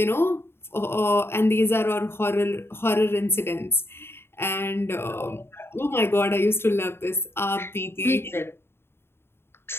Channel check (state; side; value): late; right; 0.11 ms